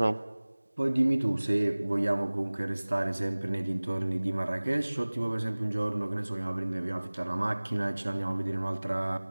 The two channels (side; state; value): both; inverted; correlation -1.00